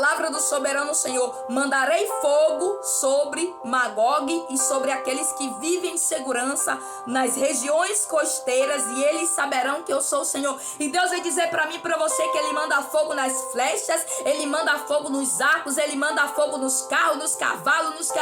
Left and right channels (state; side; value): identical; both; correlation 1.00